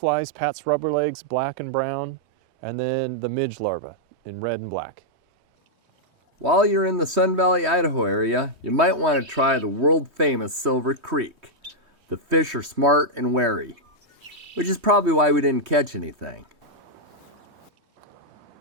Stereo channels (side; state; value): left; late; 3.2 ms